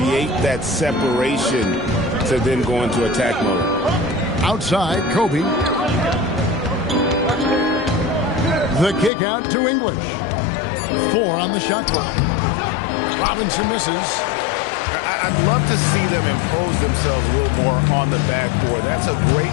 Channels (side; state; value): right; drops out; at 9.1 s